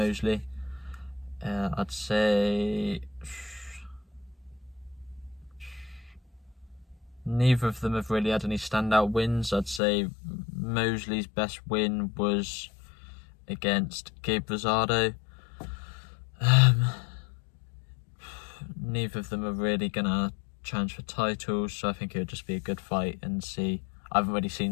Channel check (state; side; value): drops out; right; at 9.8 s